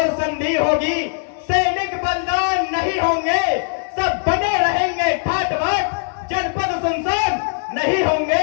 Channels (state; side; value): silent; right; digital silence